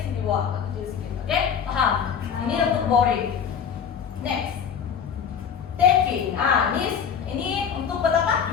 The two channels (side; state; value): right; quieter; 7.4 dB